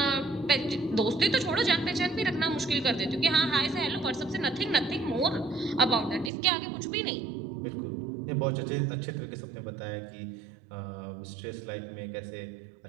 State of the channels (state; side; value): drops out; left; at 6.3 s